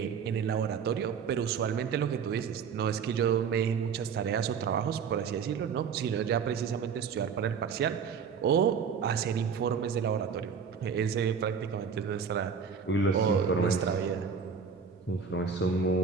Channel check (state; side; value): quieter; left; 6.4 dB